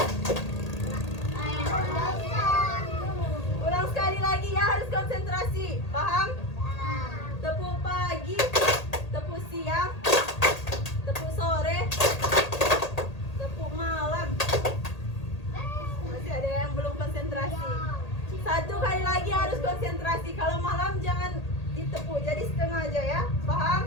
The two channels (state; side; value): late; right; 1.8 ms